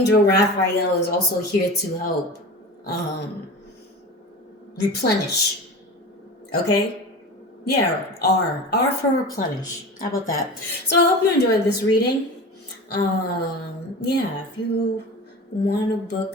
Raphael is also here to help replenish. Okay? Yeah, R for replenish. How about that? So I hope you enjoyed this reading. If you want to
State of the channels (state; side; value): normal; both; correlation 0.32